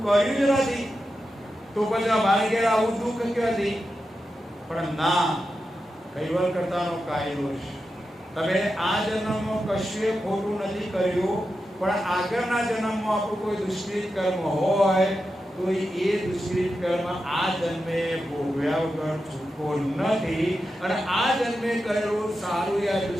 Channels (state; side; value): normal; both; correlation 0.90